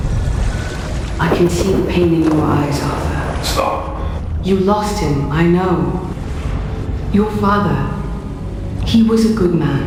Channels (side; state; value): both; identical; correlation 1.00